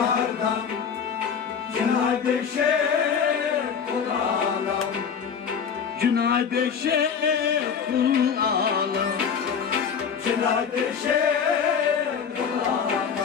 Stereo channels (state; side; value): quieter; right; 6.8 dB